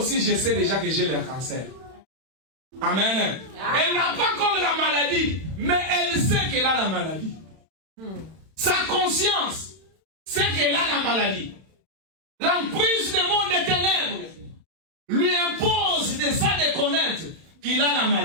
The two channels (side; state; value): left; late; 31 ms